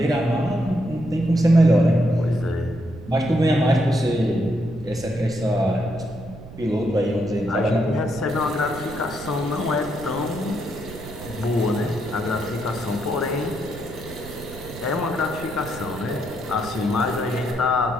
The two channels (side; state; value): right; noise; rumble, 15 dB below the sound